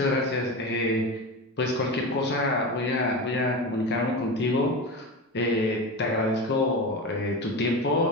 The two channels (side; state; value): both; normal; correlation 0.24